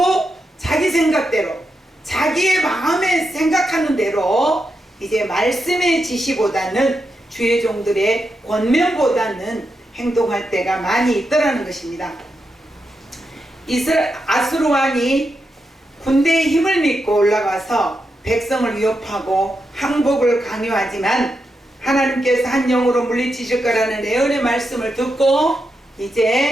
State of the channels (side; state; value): both; normal; correlation 0.86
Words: 자기 생각대로 자기의 마음에 생각하는 대로 이제 말씀의 지시보다는 주의 종들의 권면보다는 행동할 때가 많이 있더라는 것입니다. 아수르 왕이 군대의 힘을 믿고 올라가서 백성을 위협하고 항복을 강요하지만 하나님께서 한 영으로 물리치실 거라는 예언의 말씀을 듣고